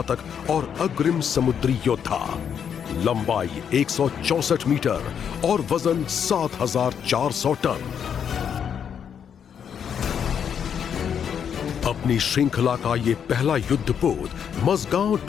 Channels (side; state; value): right; quieter; 7.9 dB